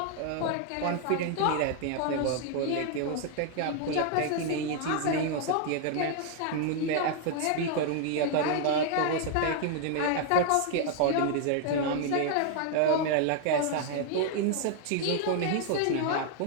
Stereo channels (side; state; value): both; different; correlation 0.00